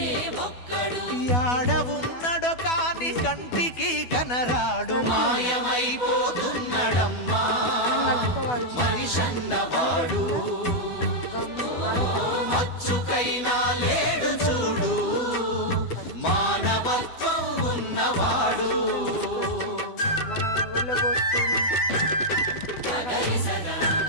యాడవున్నడో కాని కంటికి కనరాడు. మాయమైపోతున్నడమ్మా మనిషన్నవాడు, మచ్చుకైనా లేడు చూడు మానవత్వం ఉన్నవాడు.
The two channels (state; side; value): late; right; 12 ms